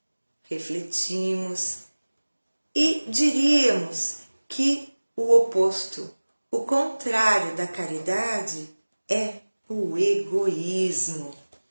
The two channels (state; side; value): inverted; both; correlation -1.00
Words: refletimos e diríamos que o oposto, o contrário da caridade é o egoísmo.